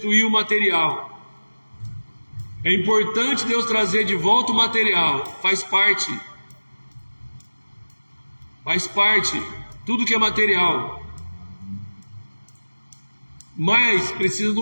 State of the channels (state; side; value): inverted; both; correlation -1.00